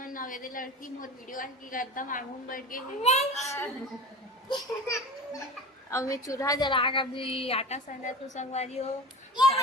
नवेदे लड़की मोर वीडियो आज की एकदम आगू में बैठ गई है। अब मैं चूल्हा जला कर भी आटा सना तो संगवारी हो,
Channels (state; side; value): normal; both; correlation 0.32